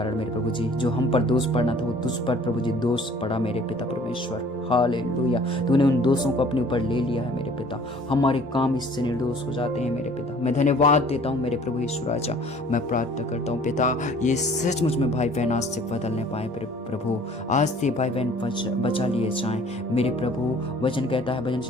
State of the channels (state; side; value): normal; both; correlation 0.53